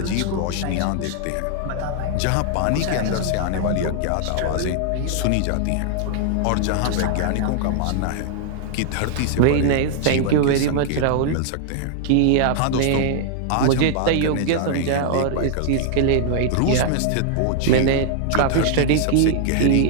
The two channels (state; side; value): different; both; correlation -0.01